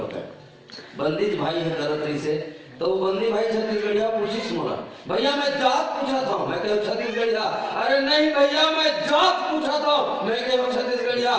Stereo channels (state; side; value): identical; both; correlation 1.00